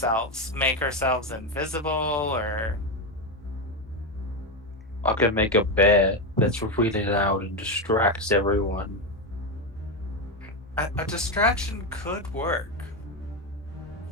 make ourselves invisible, or? I can make a bear that's really loud and distracts everyone. A distraction could work.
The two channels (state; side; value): normal; both; correlation 0.11